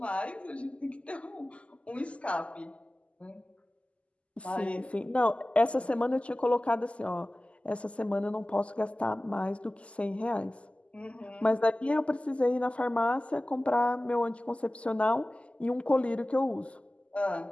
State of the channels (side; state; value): right; late; 0.058 ms